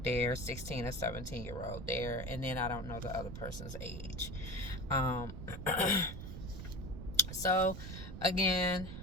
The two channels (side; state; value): right; noise; rumble, 9 dB below the sound